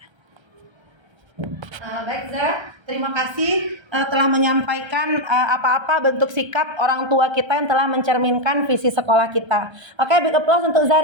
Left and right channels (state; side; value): late; left; 1.3 ms